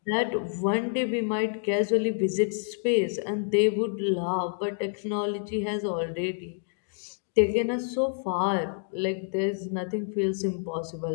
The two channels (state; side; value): silent; right; 59 dB below the other